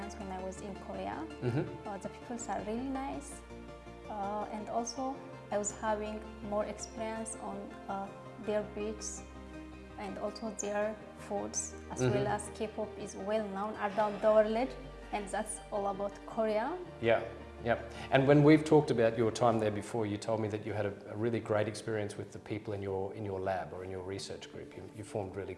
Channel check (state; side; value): identical; both; correlation 1.00